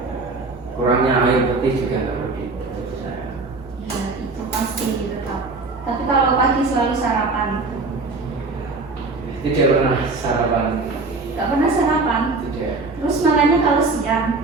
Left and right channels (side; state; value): left; quieter; 3.7 dB